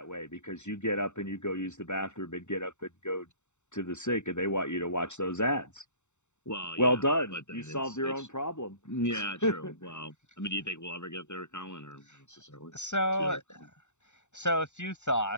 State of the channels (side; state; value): right; late; 0.84 ms